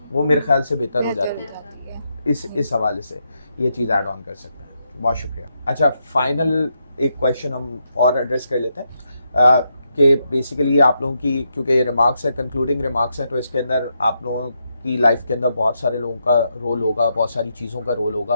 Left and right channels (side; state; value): both; inverted; correlation -0.82